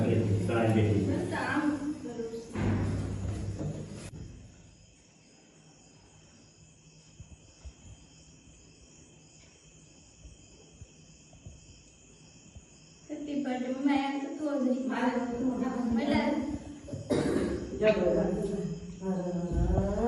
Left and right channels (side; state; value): both; identical; correlation 1.00